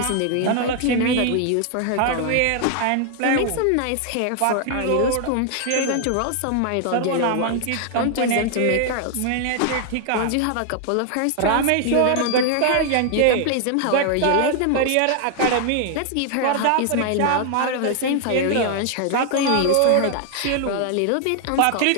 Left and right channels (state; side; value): different; both; correlation 0.00